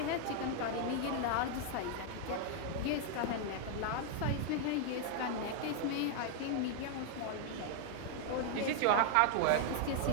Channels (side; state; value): both; different; correlation 0.00